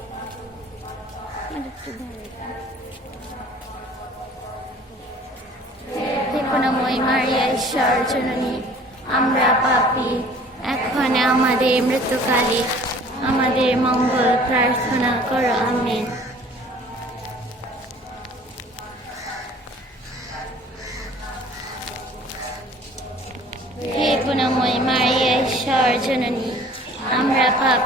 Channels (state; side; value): normal; both; correlation 0.51